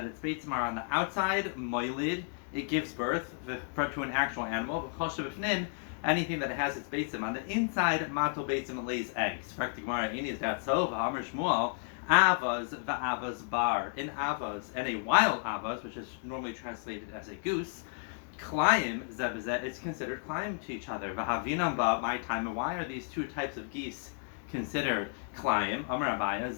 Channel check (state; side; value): silent; right; 56 dB below the other